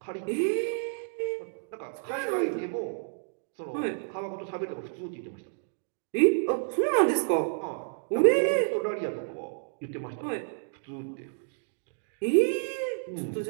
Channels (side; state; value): left; silent; digital silence